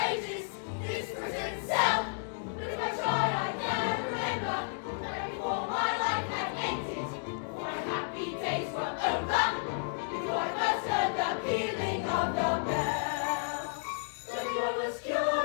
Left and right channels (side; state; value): right; silent; digital silence